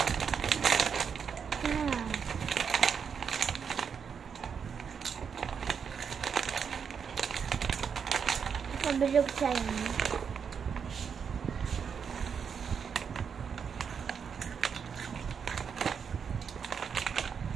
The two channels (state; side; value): quieter; left; 6.8 dB